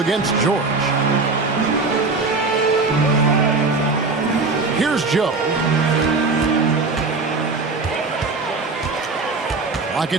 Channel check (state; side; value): quieter; left; 3.9 dB